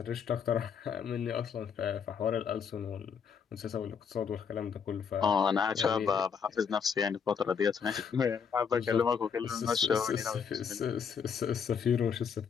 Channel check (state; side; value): quieter; right; 6.7 dB